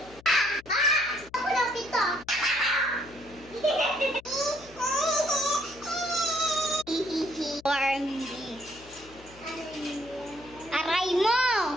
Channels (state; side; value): noise; left; hum, 22 dB below the sound